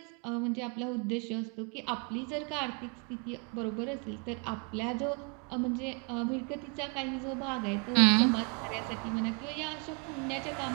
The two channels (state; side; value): quieter; left; 35.1 dB